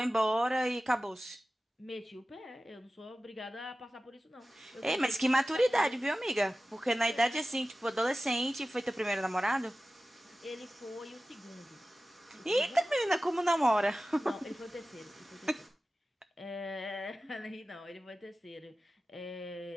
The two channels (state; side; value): normal; both; correlation 0.95